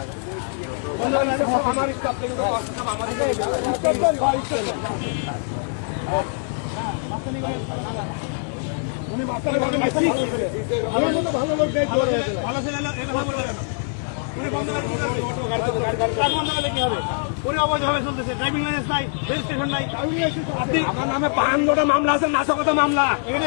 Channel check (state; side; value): silent; right; 63 dB below the other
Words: উনি মাস্টারের ভালো আমার নামে 52টা মামলা আছে, নাশকতা মামলা।